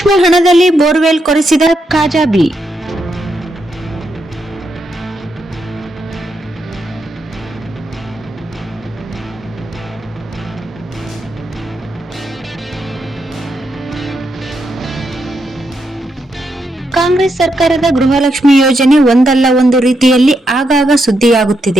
ಹಣದಲ್ಲಿ ಬೋರ್ವೆಲ್ ಕೊರೆಸಿದ ಕಾಜಾಬಿ. ಕಾಂಗ್ರೆಸ್ ಸರ್ಕಾರದ ಗೃಹಲಕ್ಷ್ಮಿ ಯೋಜನೆ ಒಂದಲ್ಲ ಒಂದು ರೀತಿಯಲ್ಲಿ ಆಗಾಗ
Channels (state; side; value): normal; both; correlation 0.81